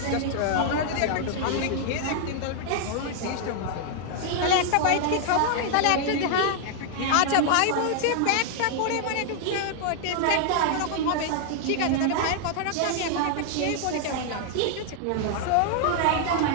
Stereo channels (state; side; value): different; both; correlation 0.00